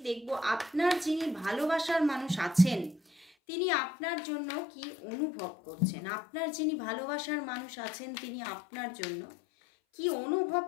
দেখব আপনার যিনি ভালোবাসার মানুষ আছেন তিনি আপনার জন্য কি অনুভব করছেন, আপনার যিনি ভালোবাসার মানুষ আছেন তিনি আপনার জন্য কি অনুভব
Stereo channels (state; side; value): drops out; right; at 3.3 s